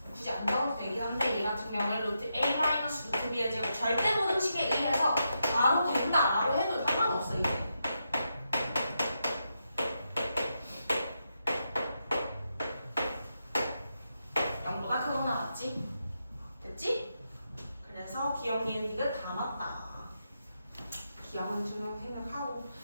굳이 안 적어도 되긴 한데 얘 같은 경우에 루트 A 마이너스 루트 B의 제곱 절대부등식에 의해서 바로 된다라고 해도 상관없어 이제. 됐지? 그래서 기억, 니은, 디귿 다 맞다. 기억은 증명 생각하고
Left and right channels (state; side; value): inverted; both; correlation -0.84